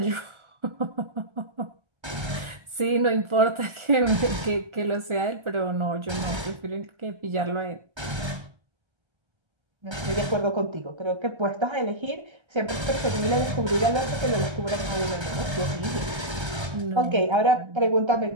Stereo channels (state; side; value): late; left; 1.3 ms